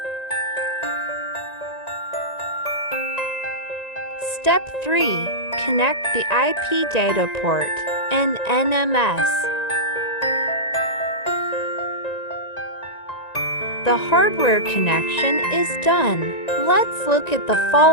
Step 3. Connect the IP data port and NMS. The hardware connection is done. Let's look at the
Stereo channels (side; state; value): right; late; 1.9 ms